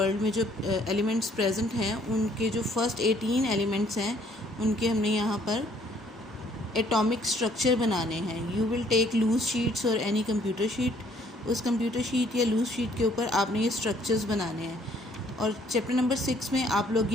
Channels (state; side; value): normal; both; correlation 0.63